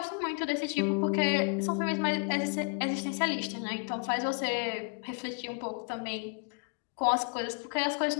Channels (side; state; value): right; quieter; 39.2 dB